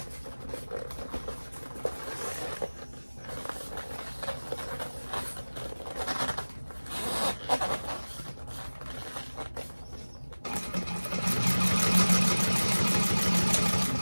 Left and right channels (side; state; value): both; inverted; correlation -1.00